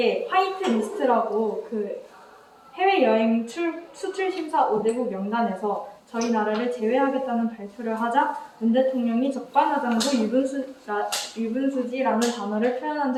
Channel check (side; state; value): both; identical; correlation 1.00